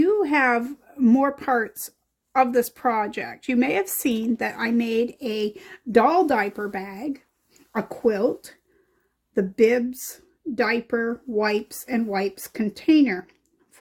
have more parts of this project. You may have seen that I made a doll diaper bag, a quilt, the bibs, diaper, wipes, and wipes container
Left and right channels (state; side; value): identical; both; correlation 1.00